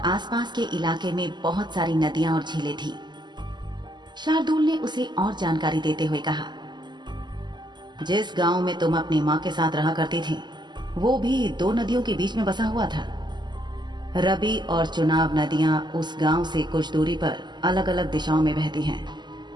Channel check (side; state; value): left; late; 0.21 ms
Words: के इलाके में बहुत सारी नदियां और झीलें थी। शार्दुल ने उसे और जानकारी देते हुए कहा, जिस गांव में तुम अपनी मां के साथ रहा करती थी वो भी 2 नदियों के बीच में बसा हुआ था। रबी और चुनाव नदियां उस गांव से कुछ दूरी पर अलग अलग दिशाओं में बहती हैं।